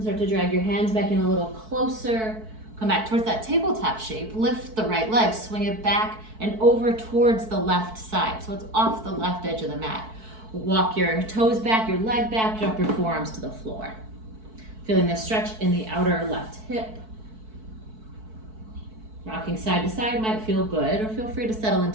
start to drag your hands back in a little closer. Come back towards that tabletop shape. Lift the right leg, swing it back and over towards the left side. So it's off the left edge of the mat. Walk your toes back, your leg back, drop your forearms to the floor. Feeling the stretch in the outer left hip. Rocking side to side might feel good, or feel free to settle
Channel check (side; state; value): left; late; 4.6 ms